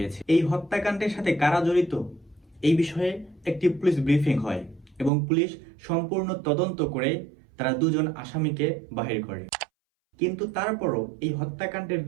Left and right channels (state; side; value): drops out; left; at 5.1 s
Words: এই হত্যাকাণ্ডের সাথে কারা জড়িত এই বিষয়ে একটি পুলিশ ব্রিফিং হয় এবং পুলিশ সম্পূর্ণ তদন্ত করে তারা 2 জন আসামিকে বাহির করে। কিন্তু তারপরও এই হত্যাকাণ্ডের